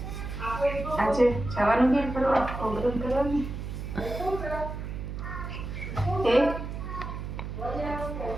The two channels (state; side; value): noise; right; hum, 6 dB below the sound